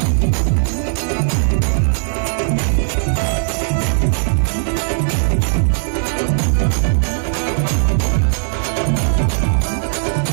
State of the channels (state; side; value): silent; left; 68 dB below the other